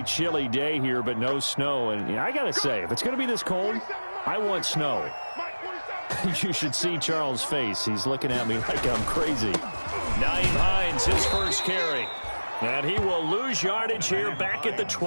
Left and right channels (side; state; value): both; inverted; correlation -1.00